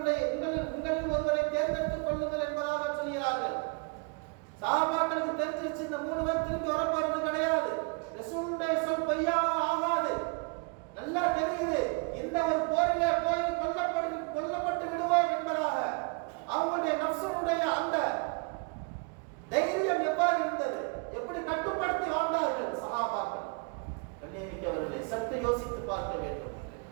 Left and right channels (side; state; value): left; quieter; 33.2 dB